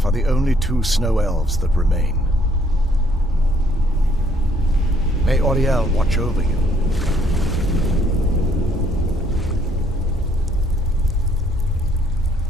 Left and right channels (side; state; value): both; normal; correlation 0.65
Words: are the only two snow elves that remain. May Auriel watch over you.